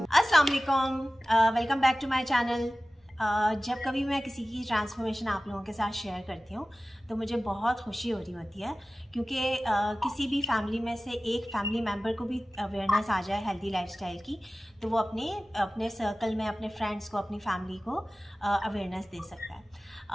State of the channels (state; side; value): normal; both; correlation 0.97